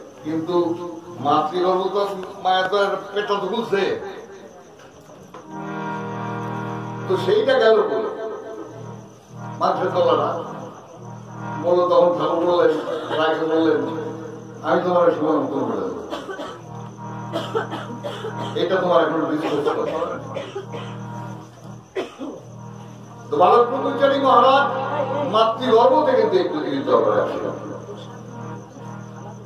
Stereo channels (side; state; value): both; identical; correlation 1.00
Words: কিন্তু মাতৃগর্ভ তো মায়ের তো পেটটা তো খুলছে, তো সেইটা গেল বলে মাছের তলাটা বললো। তখন ঠাকুর বললেন, রায়কে বললেন আমি তোমার সীমান্ত করে দেবো, এটা তোমার এখন বিশ্বাস করতে হবে। তো বালক ব্রহ্মচারী মহারাজ মাতৃগর্ভ থেকে পৃথিবীর দরবারে আসে।